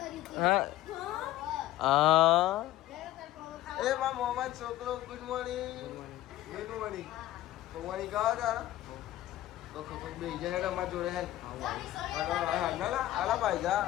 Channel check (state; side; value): quieter; right; 14.6 dB